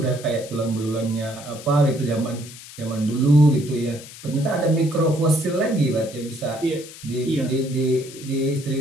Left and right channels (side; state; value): left; noise; hiss, 16 dB below the sound